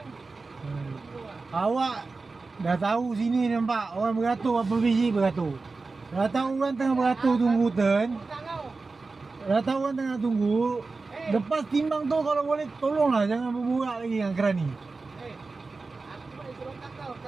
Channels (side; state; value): left; quieter; 3.9 dB